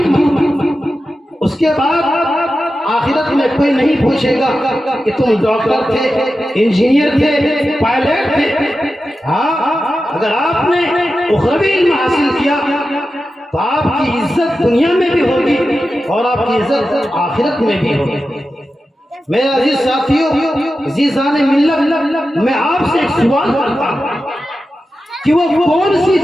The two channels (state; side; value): normal; both; correlation 0.92